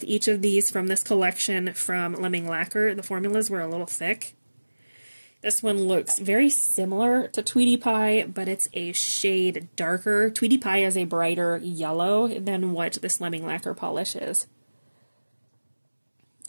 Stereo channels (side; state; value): both; inverted; correlation -1.00